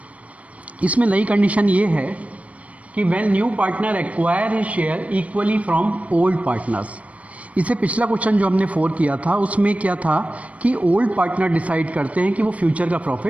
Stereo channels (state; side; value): late; left; 0.066 ms